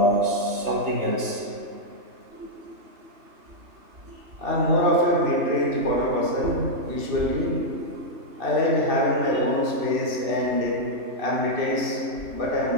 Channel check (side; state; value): left; late; 3.3 ms